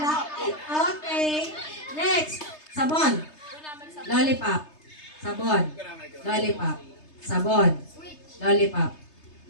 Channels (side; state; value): right; late; 3.3 ms